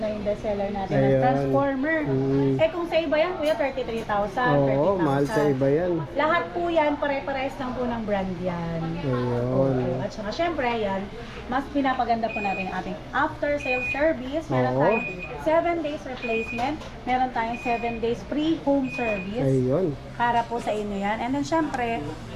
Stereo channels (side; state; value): both; identical; correlation 1.00